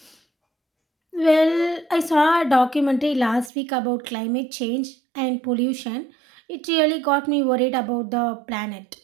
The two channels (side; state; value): left; drops out; at 3.5 s